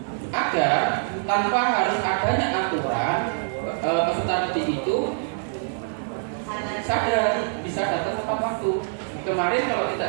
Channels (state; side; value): silent; left; digital silence